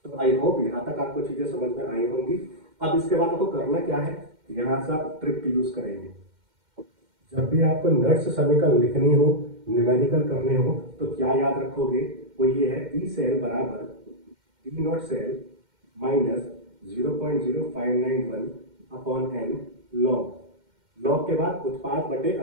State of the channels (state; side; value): late; left; 2.1 ms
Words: तो आई होप यहाँ तक आपको चीजें समझ में आई होंगी। अब इसके बाद आपको करना क्या है, यहाँ से आप ट्रिक यूज करेंगे। जब भी आपको नर्स समीकरण लिखनी हो, न्यूमेरिकल करने हो, तो क्या याद रखोगे, वो ये है ई सेल बराबर E not cell minus 0.0591 upon N log, log के बाद उत्पाद बटे